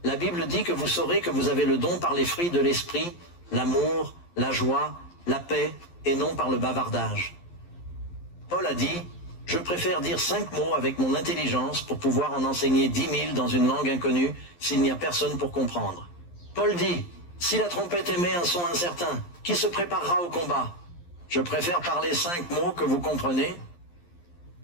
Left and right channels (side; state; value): right; late; 11 ms